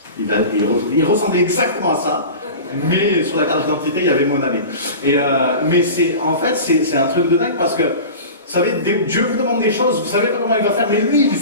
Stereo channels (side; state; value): both; inverted; correlation -0.34